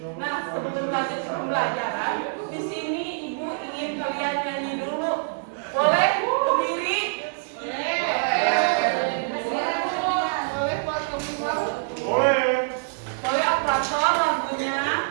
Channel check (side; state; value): left; silent; digital silence